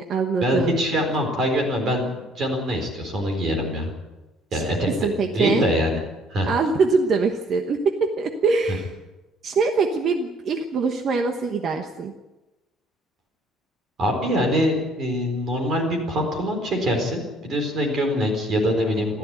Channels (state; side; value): normal; both; correlation 0.61